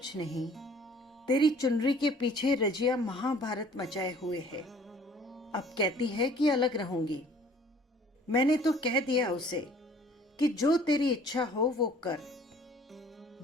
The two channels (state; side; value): normal; both; correlation 0.53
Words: नहीं, तेरी चुनरी के पीछे रजिया महाभारत मचाए हुए है। अब कहती है कि अलग रहूंगी। मैंने तो कह दिया उसे कि जो तेरी इच्छा हो वो कर।